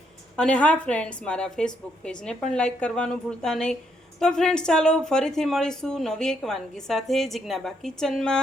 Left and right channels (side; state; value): both; normal; correlation 0.74